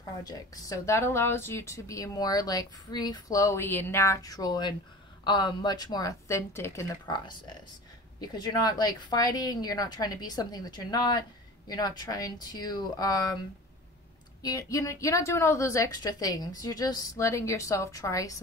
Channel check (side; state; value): both; normal; correlation 0.38